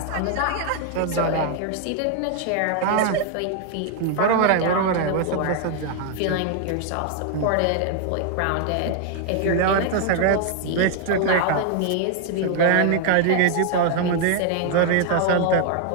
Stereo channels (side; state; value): both; different; correlation 0.00